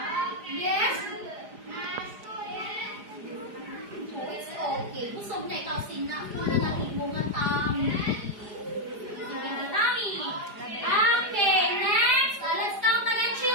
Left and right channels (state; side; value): late; left; 4.9 ms